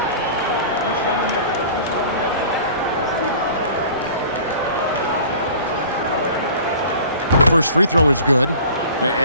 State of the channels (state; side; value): inverted; both; correlation -0.44